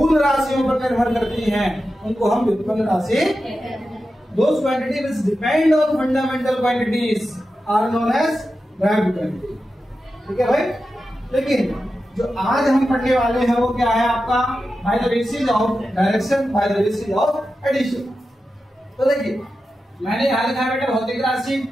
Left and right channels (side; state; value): both; normal; correlation 0.91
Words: राशियों पर निर्भर करती हैं उनको हम व्युत्पन्न राशि, those quantity which depend on fundamental quantities are known as direct quantity. ठीक है भाई। लेकिन जो आज हम पढ़ने वाले हैं वो क्या है आपका, by the basis of direction, by the basis of addition. तो देखिए मैंने यहां लिखा है बेटा भौतिक राशि,